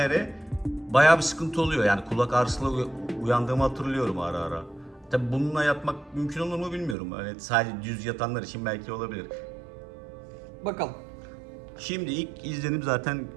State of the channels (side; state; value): left; drops out; at 7.0 s